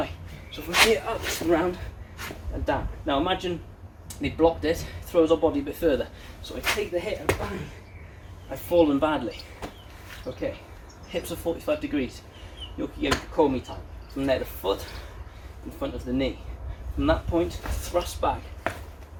So from here, up and round and down. Now imagine they blocked it, throws our body a bit further. So I take the hit and bang, I've fallen badly. Okay, hips are 45 degrees. Yoki-geri komi time. From there, the foot in front of the knee. From that point, thrust back.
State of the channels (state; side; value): identical; both; correlation 1.00